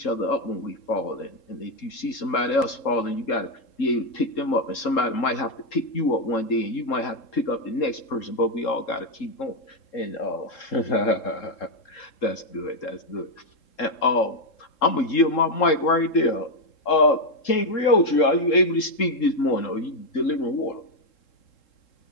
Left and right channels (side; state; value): right; late; 3.7 ms